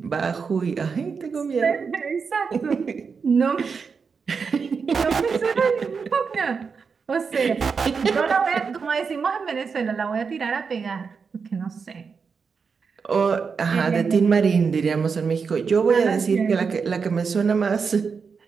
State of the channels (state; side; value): quieter; left; 5.5 dB